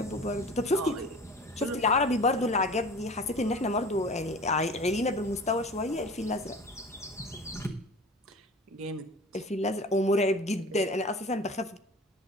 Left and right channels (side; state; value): both; normal; correlation 0.39